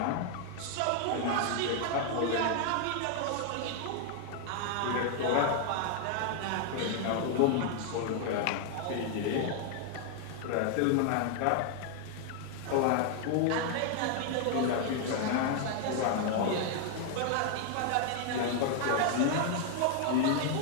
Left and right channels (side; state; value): both; different; correlation 0.00